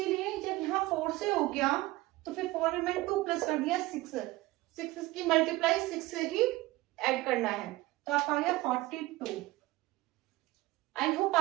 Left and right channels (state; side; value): quieter; left; 19.1 dB